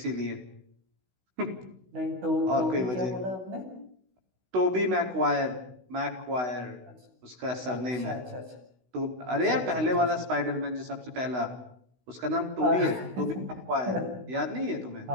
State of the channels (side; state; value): left; late; 16 ms